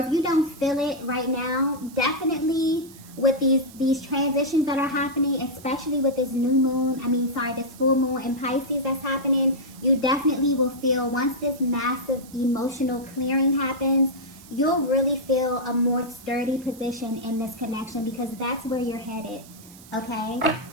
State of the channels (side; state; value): right; noise; hiss, 21 dB below the sound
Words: you don't feel it right now, definitely with these transitions that are happening, especially with this this full moon in Pisces that's happening, you definitely will feel, once this massive emotional clearing happens, you'll really feel a more sturdy position in this connection, because that's where you're headed, okay?